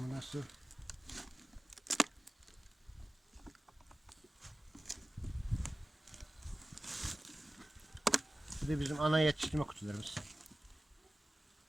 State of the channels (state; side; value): normal; both; correlation 0.96